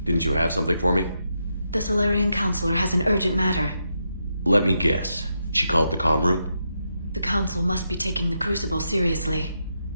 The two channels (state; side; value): inverted; both; correlation -0.83